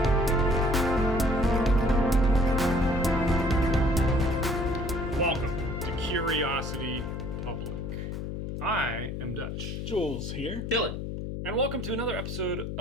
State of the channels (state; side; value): noise; left; hum, 5 dB below the sound